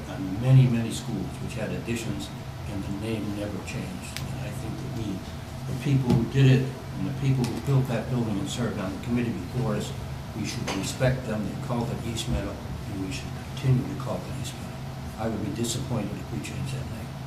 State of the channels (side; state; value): both; identical; correlation 1.00